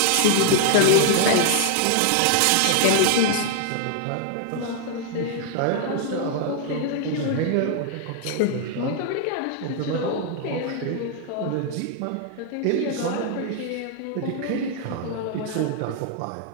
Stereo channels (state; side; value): different; both; correlation 0.00